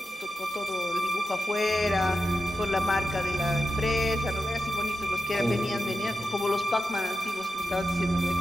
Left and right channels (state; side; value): normal; both; correlation 0.90